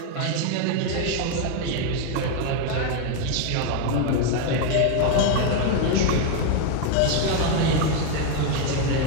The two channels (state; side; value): different; both; correlation 0.01